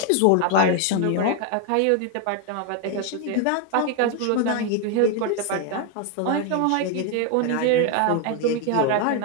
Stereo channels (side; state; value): both; different; correlation 0.01